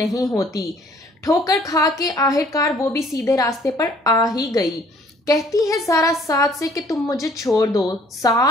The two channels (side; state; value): both; normal; correlation 0.58